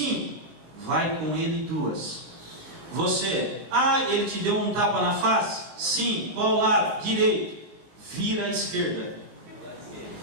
vai com ele 2. Você: ah, ele te deu um tapa na face? Sim, qual lado? Direito. Vira à esquerda.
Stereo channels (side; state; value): left; late; 20 ms